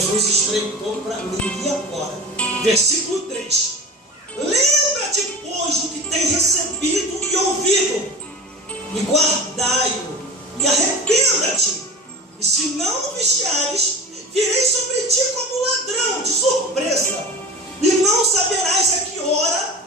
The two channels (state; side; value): normal; both; correlation 0.34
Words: estreitou para mim. E agora? Versículo 3: lembra-te, pois, do que tem recebido e ouvido, e guardai-o, e arrependa-te. E se não vigiares, virei sobre ti como ladrão, de surpresa, e não saberás a que